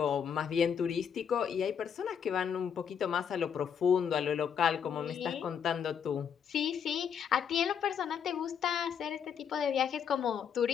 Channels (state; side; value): quieter; right; 7.6 dB